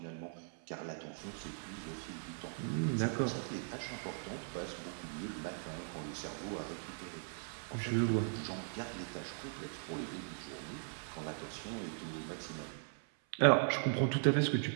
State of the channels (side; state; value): left; silent; 52 dB below the other